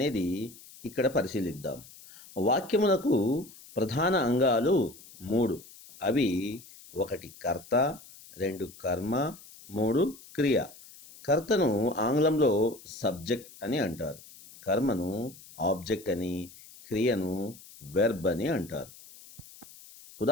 ఇక్కడ పరిశీలిద్దాం. వాక్యములకు ప్రధాన అంగాలు 3. అవి 1 కర్త, 2 కర్మ, 3 క్రియ. కర్తను ఆంగ్లంలో సబ్జెక్ట్ అని అంటారు, కర్మను ఆబ్జెక్ట్ అని, క్రియను వెర్బ్ అని అంటారు.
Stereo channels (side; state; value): left; noise; hiss, 20 dB below the sound